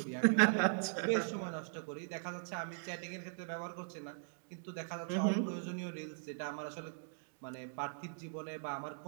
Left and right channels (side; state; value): left; silent; digital silence